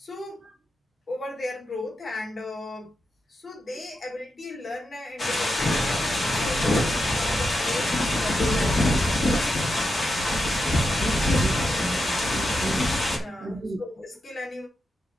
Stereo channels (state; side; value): normal; both; correlation 0.86